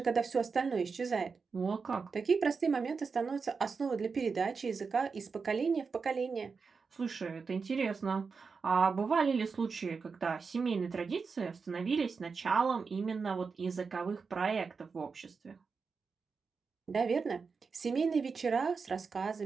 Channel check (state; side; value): quieter; left; 5.1 dB